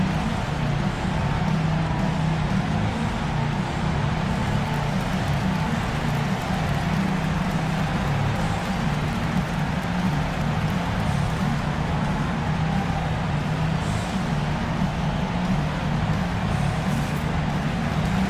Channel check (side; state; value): both; identical; correlation 1.00